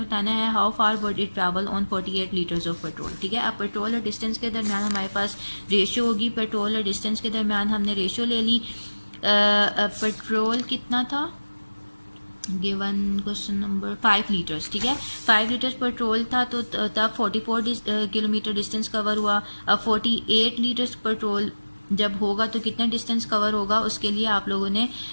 बताना है how far would it travel on 48 litres of petrol. ठीक है, अब पेट्रोल और डिस्टेंस के दरमियान हमारे पास रेशियो होगी। पेट्रोल और डिस्टेंस के दरमियान हमने रेशियो ले ली। पेट्रोल कितना था गिवन क्वेश्चन नंबर 5 लीटर्स। ठीक है, 5 लीटर्स पेट्रोल था तो तब 44 किलोमीटर डिस्टेंस कवर हुआ। अब 48 लीटर्स पेट्रोल जब होगा तो कितना डिस्टेंस कवर होगा, उसके लिए आप लोगों ने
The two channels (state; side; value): inverted; both; correlation -1.00